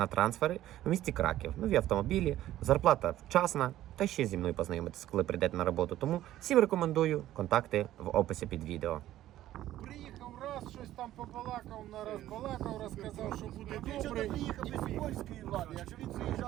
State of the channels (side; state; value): left; quieter; 13.7 dB